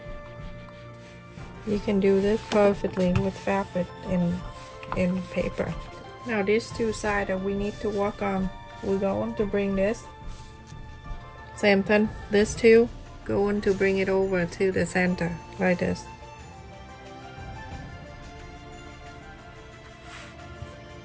You can do this perfectly with fabric and paper. Now these two sides that we need to work on, we're going to bring this. Same thing, this two, going to bring it over to the center, like this.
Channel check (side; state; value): both; identical; correlation 1.00